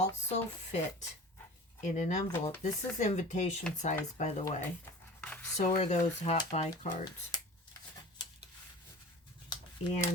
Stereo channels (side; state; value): both; normal; correlation 0.38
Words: fit in an envelope. This is invitation size, by the way. So are those Hot Buy cards.